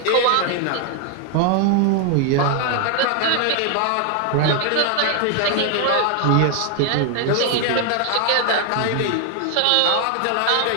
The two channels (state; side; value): different; both; correlation 0.00